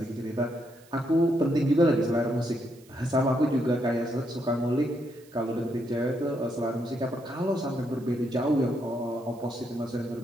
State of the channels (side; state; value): right; noise; hiss, 27 dB below the sound